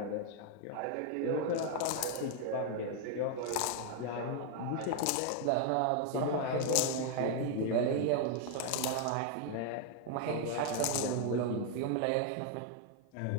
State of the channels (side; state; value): both; different; correlation 0.00